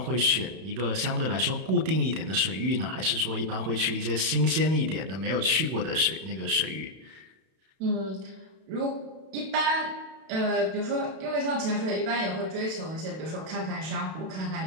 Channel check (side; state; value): left; late; 32 ms